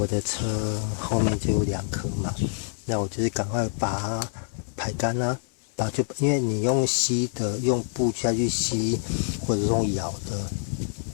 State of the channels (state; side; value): silent; right; 59 dB below the other